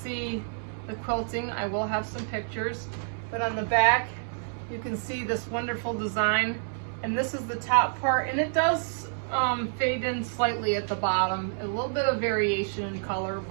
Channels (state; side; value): silent; left; digital silence